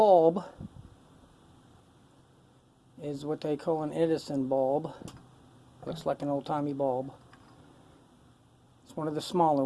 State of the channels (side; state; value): both; identical; correlation 1.00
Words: is what they call an Edison bulb. Looks like an old-timey bulb. It's one of the smaller